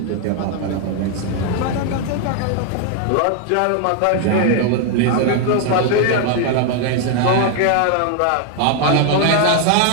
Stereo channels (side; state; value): both; different; correlation 0.00